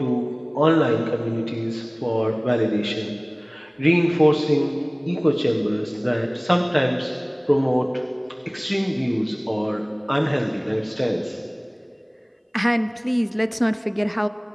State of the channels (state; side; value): identical; both; correlation 1.00